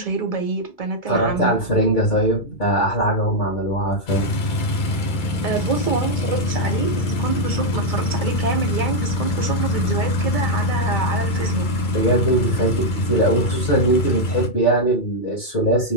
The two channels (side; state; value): right; late; 2.3 ms